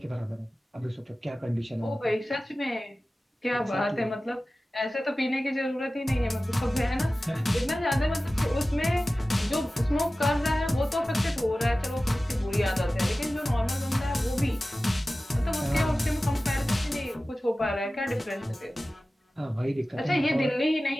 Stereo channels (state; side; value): normal; both; correlation 0.96